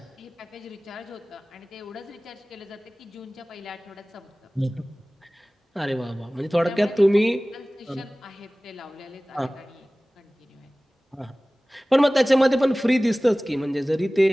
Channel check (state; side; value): normal; both; correlation 0.98